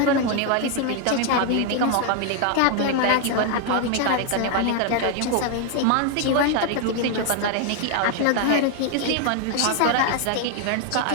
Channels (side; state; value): both; different; correlation 0.00